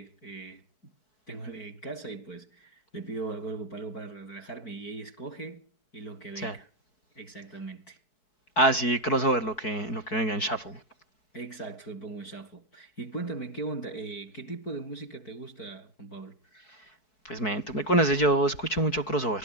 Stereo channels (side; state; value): right; late; 4.6 ms